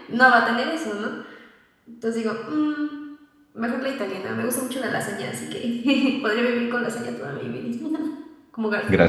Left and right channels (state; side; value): identical; both; correlation 1.00